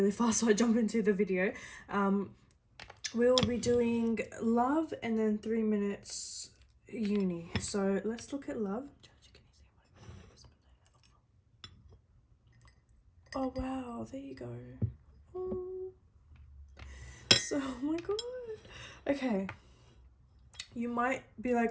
fast so I jump into the video. We'll be doing love and then 3 minutes uni. So let's look at love. Oh wow, there you go. Oh. So, oh my god. Okay. You might be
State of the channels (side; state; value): both; identical; correlation 1.00